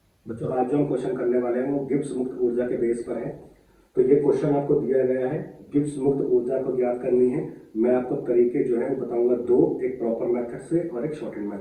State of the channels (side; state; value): both; identical; correlation 1.00